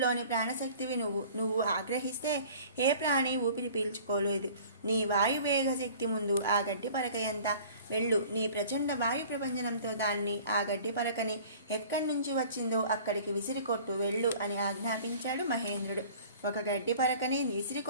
ప్రాణశక్తివి నువ్వు ఆగ్రహిస్తే ఏ ప్రాణి ఊపిరి పీల్చుకోలేదు. నీ వాయువేగ శక్తి ముందు ఆ గడ్డి పరక ఎంత? వెళ్ళు, నీ ప్రచండ వాయు ప్రపంచనంతో దాన్ని, ఆ గడ్డి పరకని ఎక్కడి నుంచి వచ్చిందో అక్కడికి విసిరికొట్టు, వెళ్ళు అని ఆజ్ఞాపించాడు మహేంద్రుడు. ఒక గడ్డి పరకని విసిరి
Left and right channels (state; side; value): inverted; both; correlation -0.47